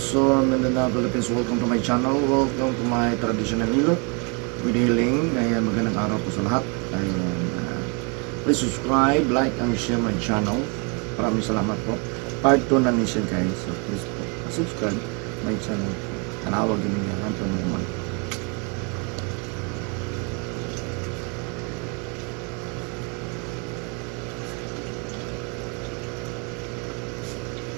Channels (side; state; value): left; quieter; 34.0 dB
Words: Mindanao, Philippines. Welcome to my channel. Welcome to my traditional Hilot with healing. Ayan, magandang araw po sa lahat. Ayan, please subscribe, like, and share my channel. Maraming salamat po. Part 2 na niya guys. So please po, subscribe my channel. Tanawag din niya. Hanto naman.